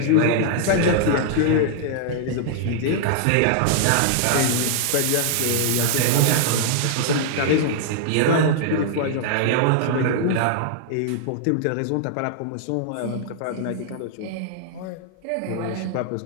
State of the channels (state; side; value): different; both; correlation -0.01